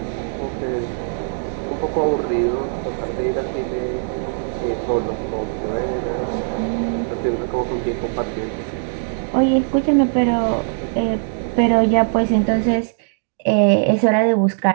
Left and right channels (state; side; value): silent; left; digital silence